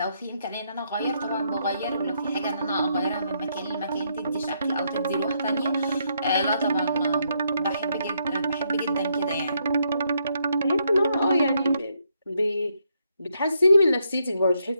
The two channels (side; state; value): both; inverted; correlation -0.76